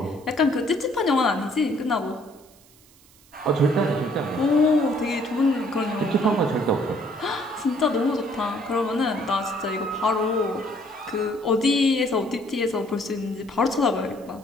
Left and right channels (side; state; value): right; noise; hiss, 27 dB below the sound